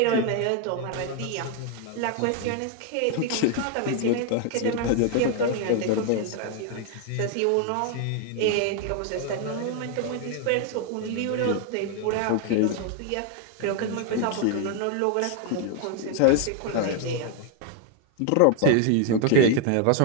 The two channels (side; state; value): both; different; correlation 0.00